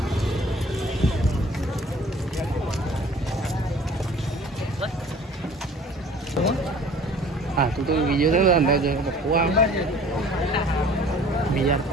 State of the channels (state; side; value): normal; both; correlation 0.49